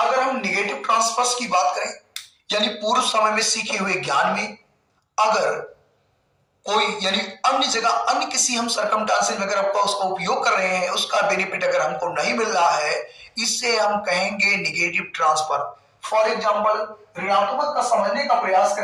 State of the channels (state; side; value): identical; both; correlation 1.00